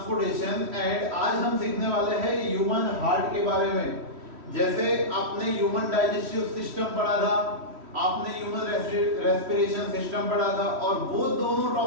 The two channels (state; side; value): late; left; 3.1 ms